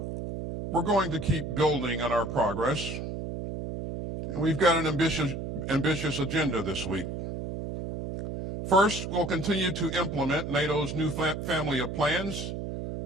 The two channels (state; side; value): noise; right; hum, 5 dB below the sound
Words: we're going to keep building on our progress, and we've got an ambitious agenda this week. First, we'll continue to implement NATO's new family of plans,